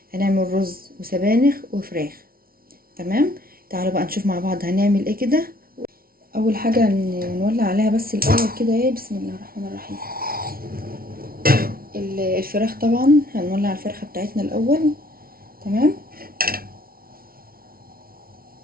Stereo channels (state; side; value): late; left; 0.43 ms